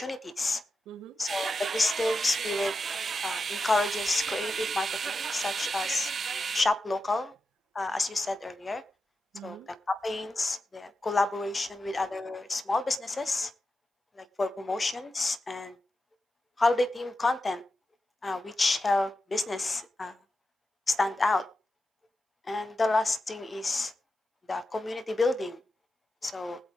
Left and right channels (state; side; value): normal; both; correlation 0.90